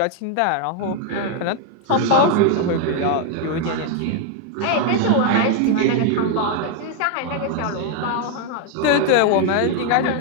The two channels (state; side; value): different; both; correlation 0.01